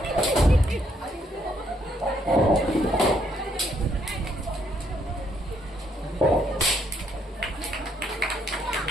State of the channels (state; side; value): normal; both; correlation 0.71